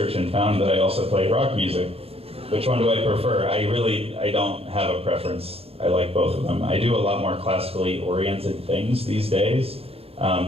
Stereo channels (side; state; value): left; late; 0.28 ms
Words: and found that I also play rock music. Which one do I prefer? I don't have a preference. I like both of them. I do a lot more classically oriented things these days.